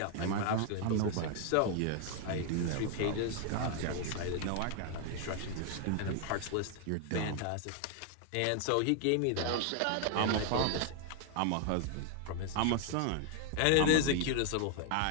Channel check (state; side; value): different; both; correlation 0.00